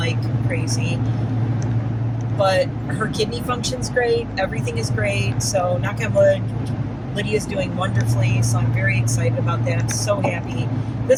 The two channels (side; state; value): both; identical; correlation 1.00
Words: crazy. But her kidney function's great. Everything is great. So knock on wood, Lydia's doing wonderfully. So I'm very excited about that. So happy.